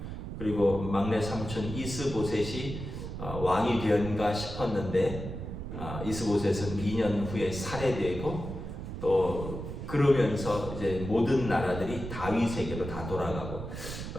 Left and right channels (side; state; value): right; noise; rumble, 7 dB below the sound